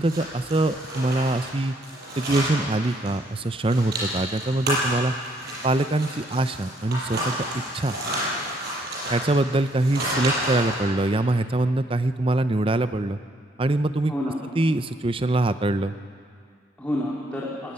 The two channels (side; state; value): both; normal; correlation 0.69